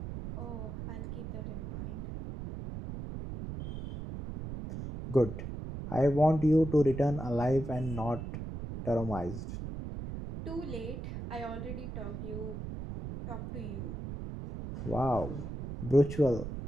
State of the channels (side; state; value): right; noise; rumble, 7 dB below the sound